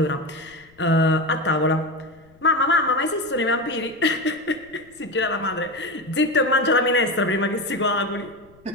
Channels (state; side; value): noise; left; rumble, 29 dB below the sound